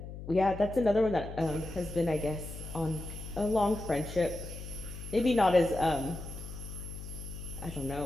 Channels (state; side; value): noise; left; hum, 10 dB below the sound